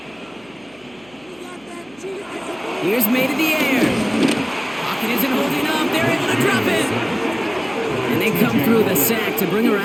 Here's May to the air. Pocket isn't holding up. They're able to drop it. And they come through the sack to bring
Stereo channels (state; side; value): noise; right; hum, 28 dB below the sound